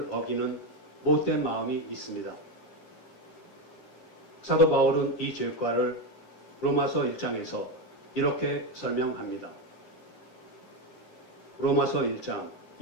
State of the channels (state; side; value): late; right; 9.7 ms